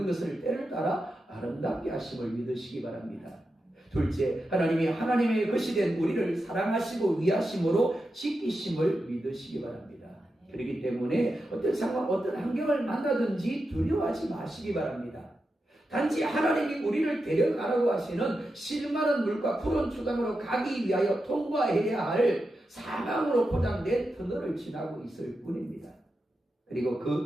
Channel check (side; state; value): both; normal; correlation 0.89